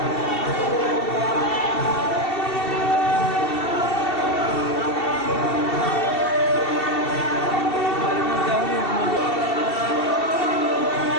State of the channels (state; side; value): late; right; 2.7 ms